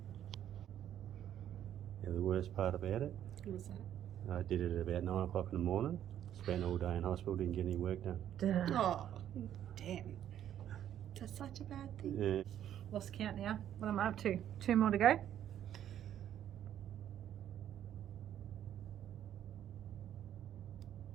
Yeah, the worst part about it, What was that? I did it at about 9 o'clock in the morning. Spent all day in hospital, didn't get any work done. Oh, damn. That's such a bad thing. Yeah. Lost count now. What am I up to? 2 more to go?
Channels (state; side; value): quieter; left; 10.7 dB